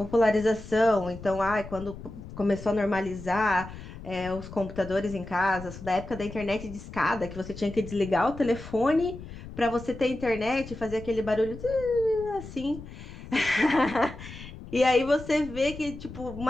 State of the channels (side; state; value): left; noise; rumble, 13 dB below the sound